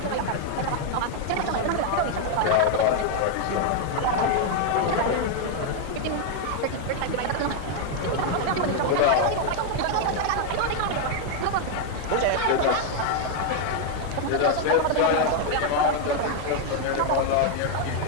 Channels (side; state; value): both; different; correlation 0.00